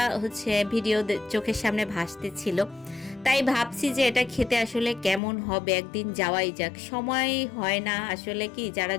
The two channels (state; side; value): drops out; right; at 5.2 s